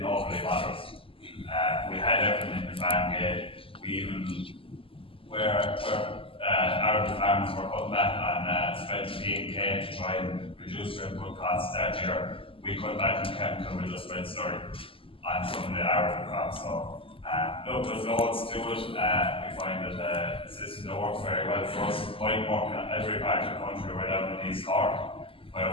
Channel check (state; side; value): late; right; 0.26 ms